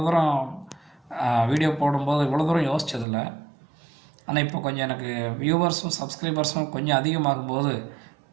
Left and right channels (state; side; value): drops out; left; at 3.1 s